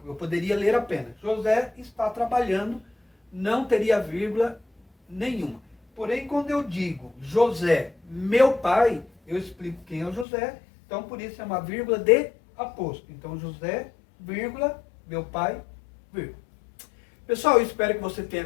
eu poderia ler apenas. José está trabalhando, não teria vírgula nenhuma. Porém, quando eu digo José, meu pai, eu explico quem é o José. Então, por isso é uma vírgula de aposto. Então, José, vírgula, meu pai, vírgula. Pessoal, eu espero que você tenha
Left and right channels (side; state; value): right; drops out; at 10.2 s